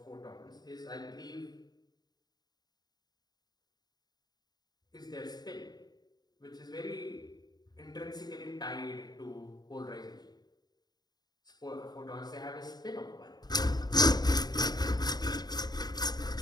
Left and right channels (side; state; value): right; late; 0.20 ms